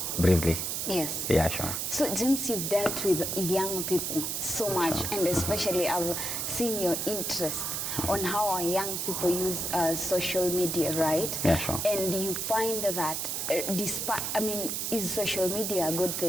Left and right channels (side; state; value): right; noise; hiss, 2 dB below the sound